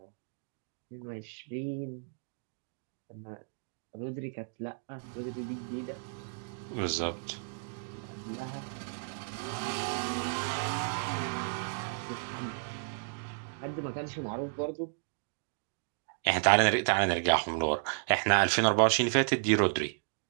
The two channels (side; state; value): left; silent; digital silence